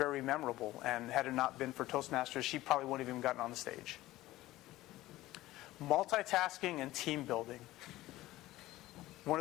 memorable. And had it not been for Toastmasters, she probably wouldn't have even gotten on the stage. Multitasking and team building. One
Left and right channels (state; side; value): quieter; right; 16.7 dB